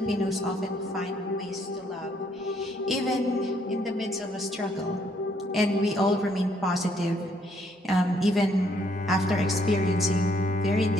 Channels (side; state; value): both; normal; correlation 0.69